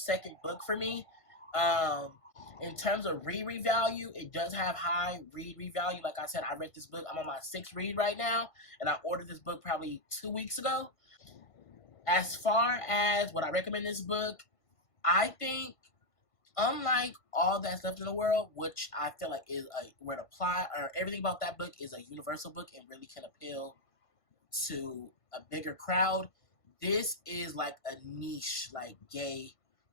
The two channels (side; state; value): right; late; 1.5 ms